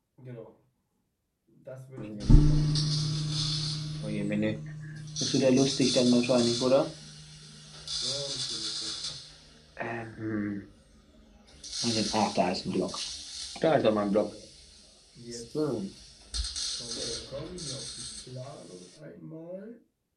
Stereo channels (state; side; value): identical; both; correlation 1.00